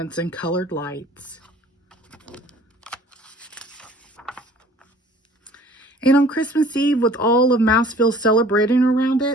and colored lights. And on Christmas Eve, with all of Mouseville celebrating around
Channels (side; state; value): both; normal; correlation 0.51